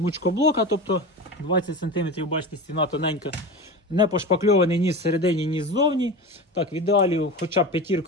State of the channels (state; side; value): normal; both; correlation 0.27